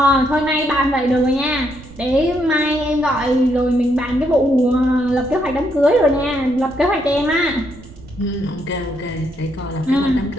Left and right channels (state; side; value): noise; right; rumble, 19 dB below the sound